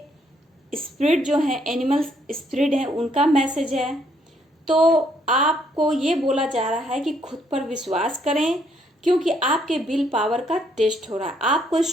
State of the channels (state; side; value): normal; both; correlation 0.70